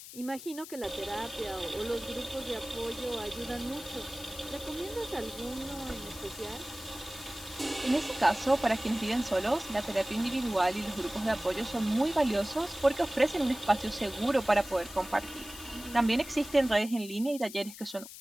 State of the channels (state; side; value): noise; left; hiss, 14 dB below the sound